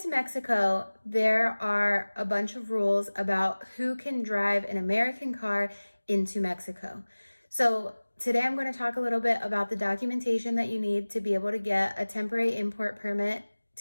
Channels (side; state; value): both; inverted; correlation -1.00